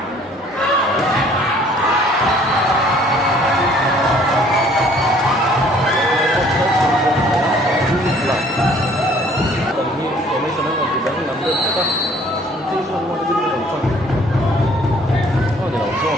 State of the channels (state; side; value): normal; both; correlation 0.57